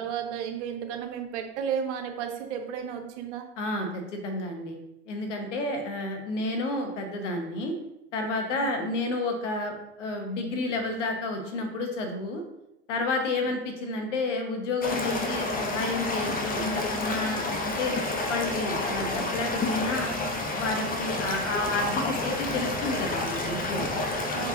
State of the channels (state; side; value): normal; both; correlation 0.16